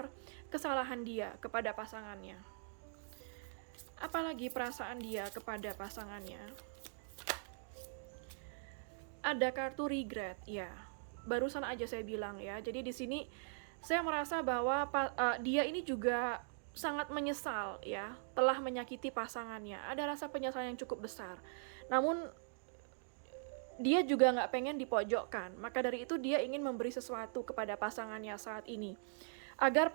kesalahan dia kepada pasangannya. Apalagi perasaan dia kepada pasangannya. Ada kartu regret, ya. Barusan aja saya bilang ya. Jadi di sini saya merasa bahwa dia ini juga sangat menyesal ya, telah menyakiti pasangannya. Ada rasa penyesalan yang cukup besar. Namun dia juga nggak pengen dipojokkan. Maka dari itu dia ingin memberi sesuatu kepada pasangannya saat ini, agar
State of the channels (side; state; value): left; silent; digital silence